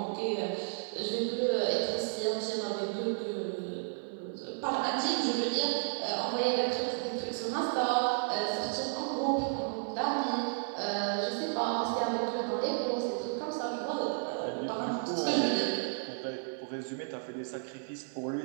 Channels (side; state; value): left; silent; digital silence